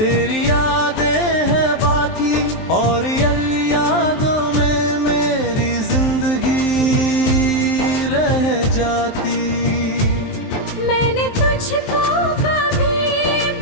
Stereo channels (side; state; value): right; late; 23 ms